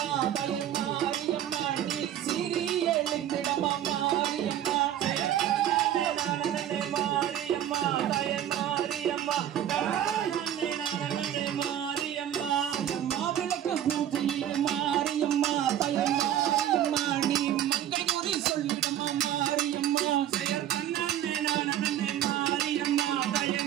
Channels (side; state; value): left; quieter; 11.1 dB